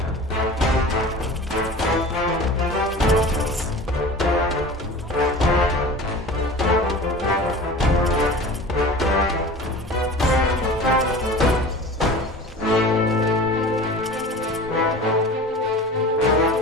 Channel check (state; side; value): normal; both; correlation 0.38